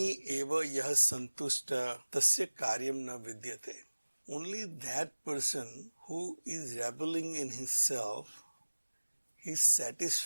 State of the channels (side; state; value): both; inverted; correlation -1.00